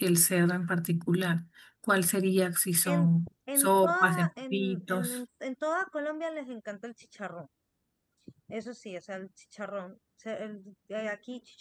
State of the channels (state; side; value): identical; both; correlation 1.00